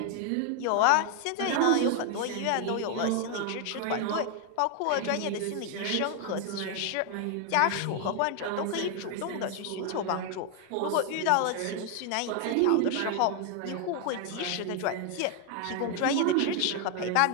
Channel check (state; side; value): different; both; correlation 0.00